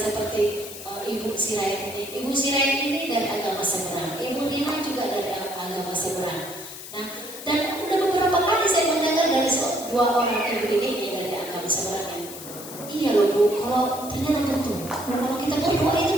Ibu Sirait ini. Ibu Sirait ini dari agama seberang. Ibu Nina juga dari agama seberang. Nah, dan udah beberapa kali saya mendengar dari dua orang ibu ini dari agama seberang. Iya loh Bu, kalau ternyata betul. Kalau kita berdoa itu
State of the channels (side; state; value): left; noise; hiss, 12 dB below the sound